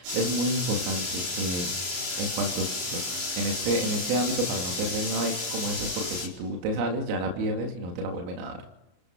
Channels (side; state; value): left; late; 33 ms